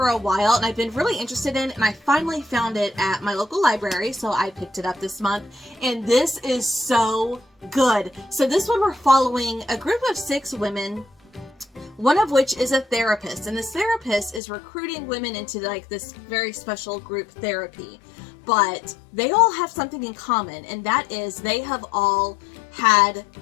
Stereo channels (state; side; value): drops out; right; at 14.4 s